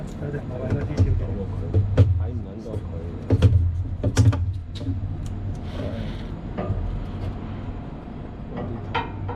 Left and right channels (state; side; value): identical; both; correlation 1.00